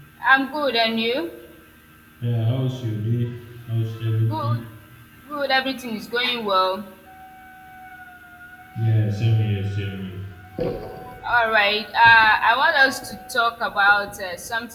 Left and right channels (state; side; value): identical; both; correlation 1.00